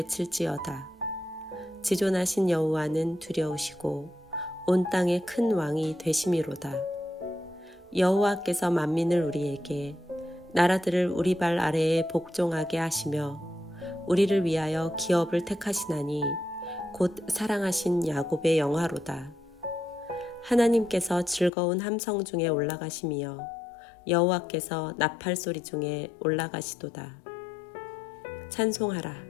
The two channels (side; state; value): right; drops out; at 21.5 s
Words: 지존하신 여호와는 두려우시고 온 땅의 큰 왕이 되심이로다. 여호와께서 만민을 우리에게 나라들을 우리 발 아래에 복종하게 하시며 우리를 위하여 기업을 택하시나니 곧 사랑하신 야곱의 영화로다. 하나님께서 즐거운 함성 중에 올라가시며 여호와께서 나팔 소리 중에 올라가시도다. 찬송하라.